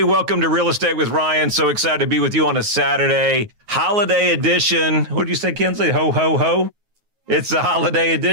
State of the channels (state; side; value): late; left; 9.4 ms